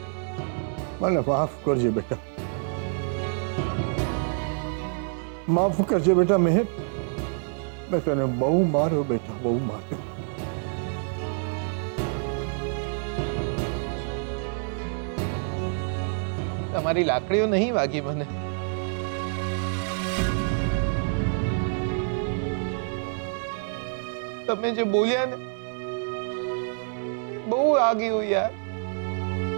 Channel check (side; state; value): left; silent; 60 dB below the other